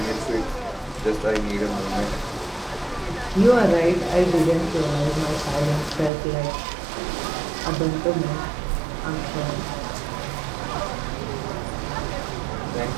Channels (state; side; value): drops out; left; at 6.1 s